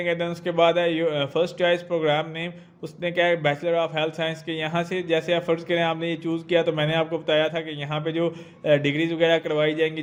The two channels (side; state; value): both; identical; correlation 1.00